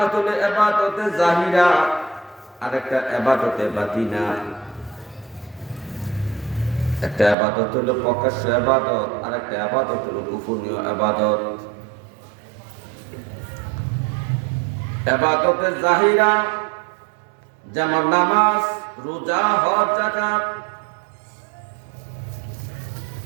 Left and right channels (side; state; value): left; drops out; at 7.4 s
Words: হলো ইবাদতে জাহিরা, আর একটা ইবাদতে বাতিনা। একটা ইবাদত হলো প্রকাশ্য ইবাদত, আর একটা ইবাদত হলো গোপনীয় ইবাদত। ইবাদতে জাহিরা যেমন নামাজ, রোজা, হজ, যাকাত,